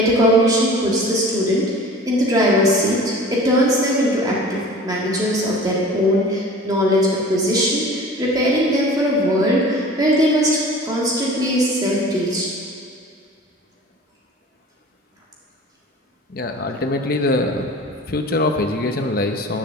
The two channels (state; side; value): normal; both; correlation 0.42